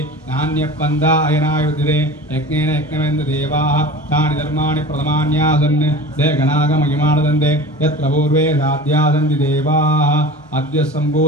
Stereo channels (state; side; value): normal; both; correlation 0.36